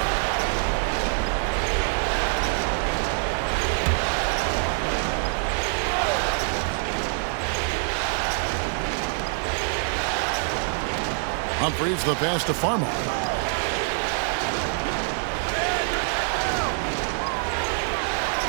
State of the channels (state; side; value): silent; left; 62 dB below the other